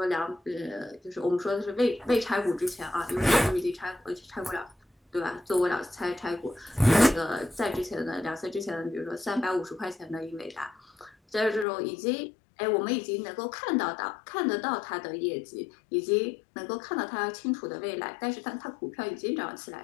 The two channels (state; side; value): drops out; right; at 11.7 s